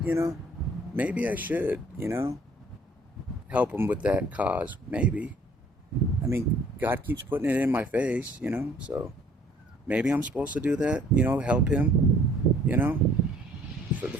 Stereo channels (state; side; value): normal; both; correlation 0.57